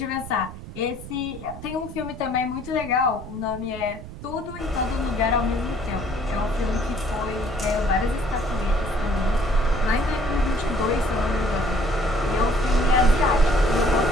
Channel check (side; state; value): right; noise; rumble, 13 dB below the sound